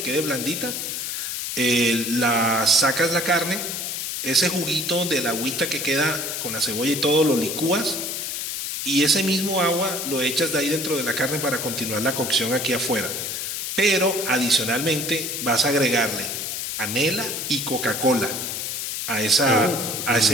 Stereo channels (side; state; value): left; noise; hiss, 4 dB below the sound